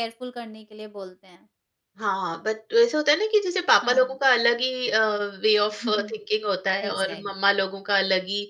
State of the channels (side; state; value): both; identical; correlation 1.00